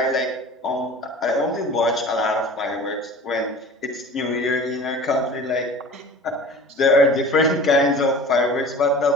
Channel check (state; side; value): normal; both; correlation 0.40